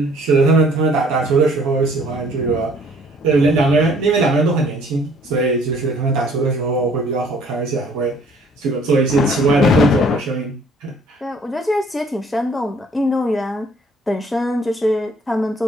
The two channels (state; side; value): normal; both; correlation 0.58